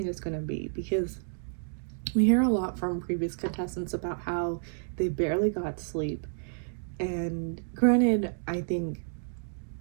is gonna be, because we hear a lot from previous contestants about how they barely got sleep. And granted, I think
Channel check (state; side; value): silent; left; digital silence